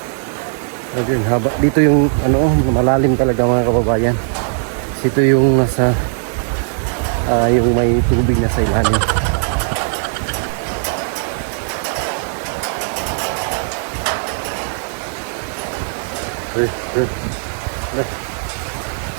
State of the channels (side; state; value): left; silent; 67 dB below the other